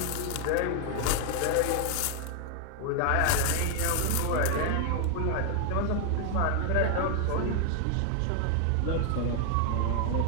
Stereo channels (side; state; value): both; different; correlation 0.00